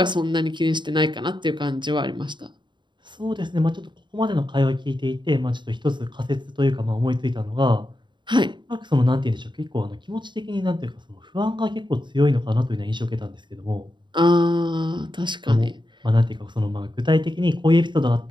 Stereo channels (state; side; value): late; left; 0.22 ms